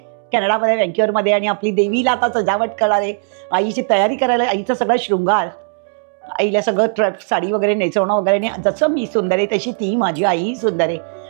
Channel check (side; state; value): left; silent; digital silence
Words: कॅनडामध्ये व्हँक्युअरमध्ये। आणि आपली देवीला आता सजावट करणार आहे, आईची तयारी करायला, आईचा सगळा शृंगार, आईला सगळं साडी वगैरे नेसवणं वगैरे। जसं मी सुंदर आहे तशी ती माझी आई सुंदर आहे